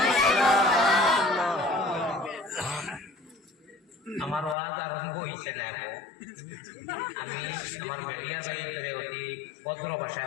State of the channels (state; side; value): drops out; right; at 4.5 s